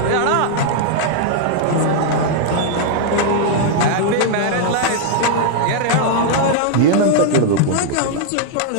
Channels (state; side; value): different; both; correlation -0.01